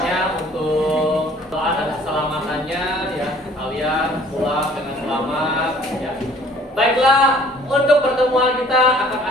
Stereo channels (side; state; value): both; normal; correlation 0.54